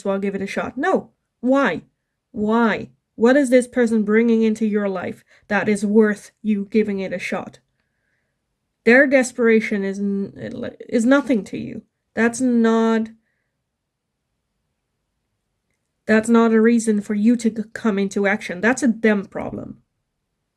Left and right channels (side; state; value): both; identical; correlation 1.00